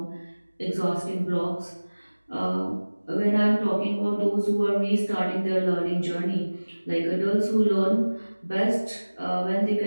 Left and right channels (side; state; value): both; inverted; correlation -1.00